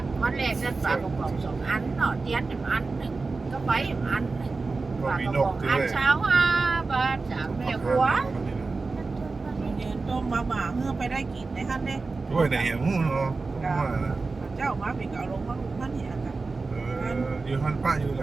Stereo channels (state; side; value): quieter; left; 3.9 dB